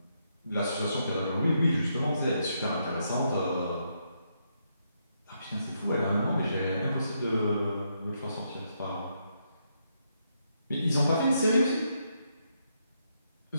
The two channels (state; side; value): inverted; both; correlation -0.79